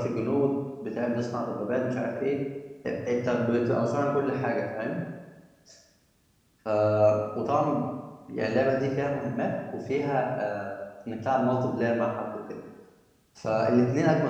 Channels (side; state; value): both; identical; correlation 1.00